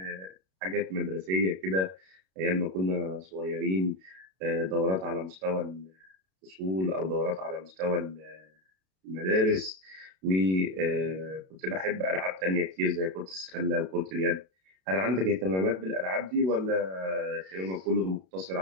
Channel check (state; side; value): late; left; 32 ms